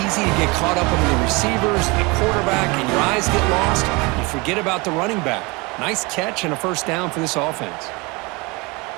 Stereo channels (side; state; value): left; quieter; 26.4 dB